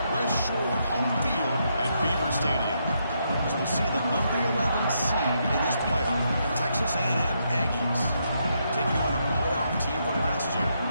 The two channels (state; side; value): inverted; both; correlation -0.78